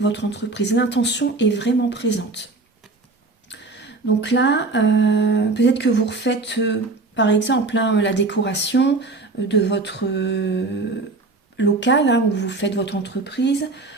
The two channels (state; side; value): quieter; left; 3.5 dB